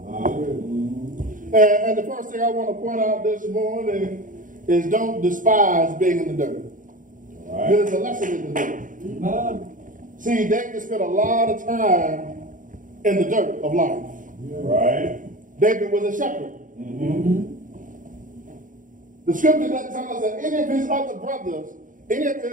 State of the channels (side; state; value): left; late; 0.38 ms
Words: And the first thing I want to point out this morning is don't despise being in the dirt. There's a lesson in the dirt. See, David spent a lot of time in the dirt of life. Right. David was a shepherd. The scripture doesn't tell us that any of his other brothers, any of